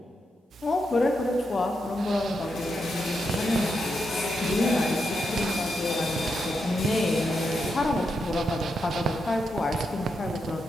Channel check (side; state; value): both; normal; correlation 0.84